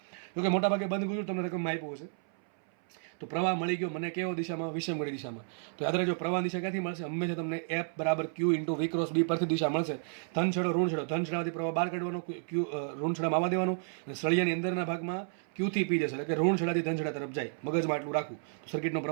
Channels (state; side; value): silent; left; 57 dB below the other